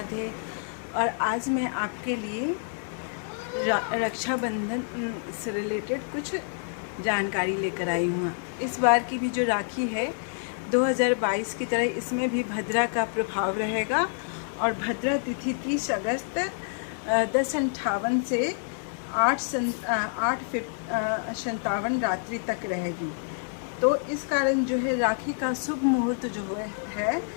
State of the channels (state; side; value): silent; right; digital silence